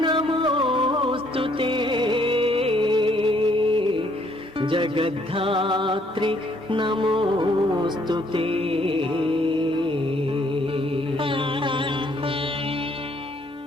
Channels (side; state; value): both; normal; correlation 0.66